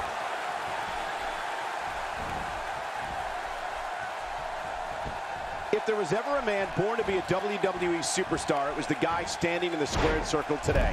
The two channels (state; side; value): identical; both; correlation 1.00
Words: If there was ever a man born to be a WWE superstar, it was the guy standing in the squared circle today,